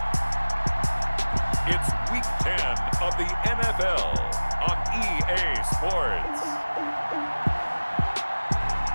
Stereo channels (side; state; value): both; inverted; correlation -1.00